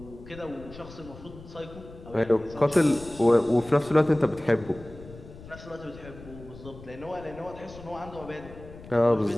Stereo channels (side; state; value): left; noise; rumble, 17 dB below the sound